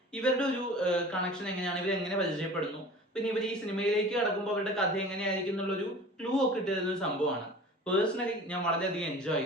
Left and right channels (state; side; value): normal; both; correlation 0.41